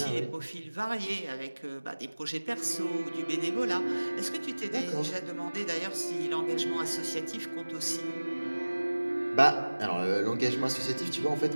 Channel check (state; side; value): inverted; both; correlation -1.00